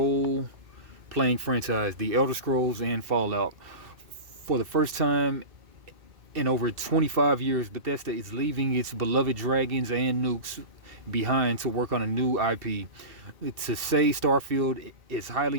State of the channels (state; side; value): late; left; 2.2 ms